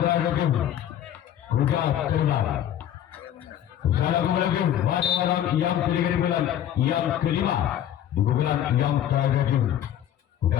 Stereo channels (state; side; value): quieter; right; 10.8 dB